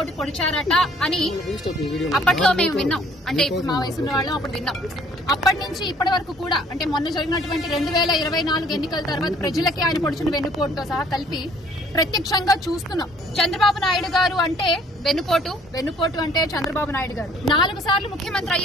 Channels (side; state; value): both; normal; correlation 0.59